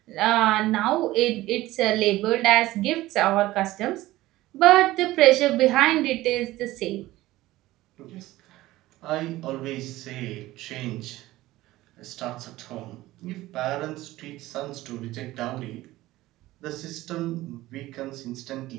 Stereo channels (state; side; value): quieter; left; 17.2 dB